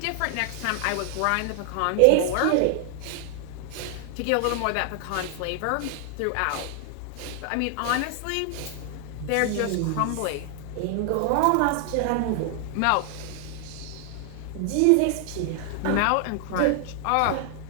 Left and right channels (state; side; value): different; both; correlation 0.00